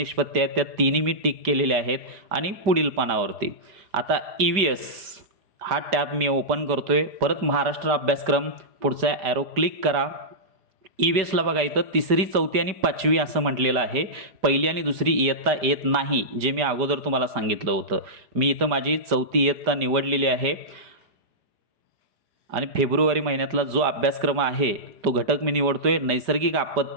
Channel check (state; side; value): late; left; 4.9 ms